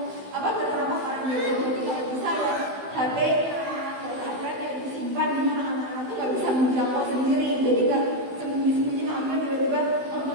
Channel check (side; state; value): left; late; 16 ms